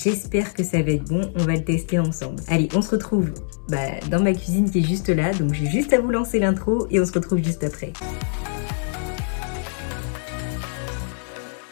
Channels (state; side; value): silent; right; digital silence